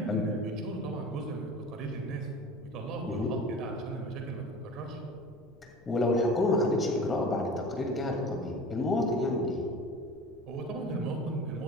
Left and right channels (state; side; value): noise; left; rumble, 26 dB below the sound